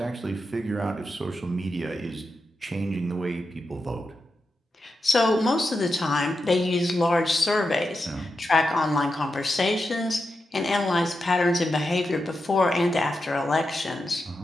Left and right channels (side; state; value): both; normal; correlation 0.88